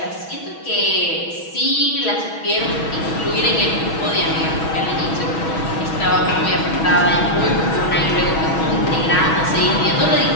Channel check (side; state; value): right; late; 6.2 ms